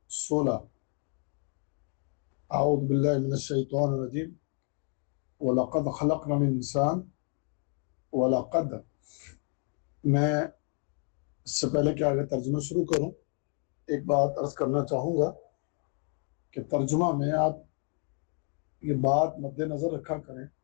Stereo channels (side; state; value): right; quieter; 38.2 dB